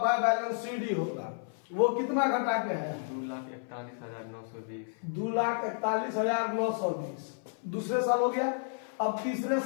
बैलेंस सीडी होगा। वो कितना घटा के है, 2,41,920। 2,41,920 दूसरे साल हो गया। अब तीसरे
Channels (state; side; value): silent; right; 57 dB below the other